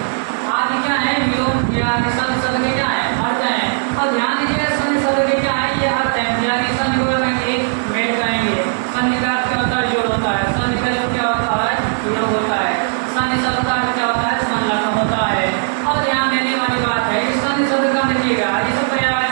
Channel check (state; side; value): silent; left; digital silence